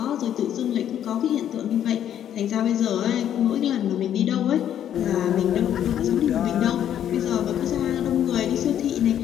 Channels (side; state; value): right; quieter; 10.3 dB